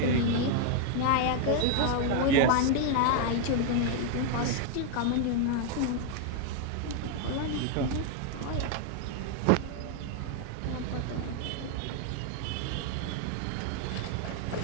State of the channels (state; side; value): different; both; correlation 0.00